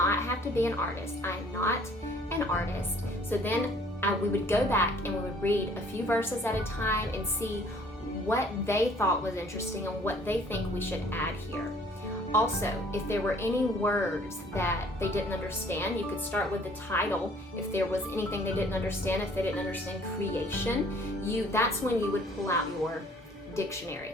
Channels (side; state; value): both; normal; correlation 0.56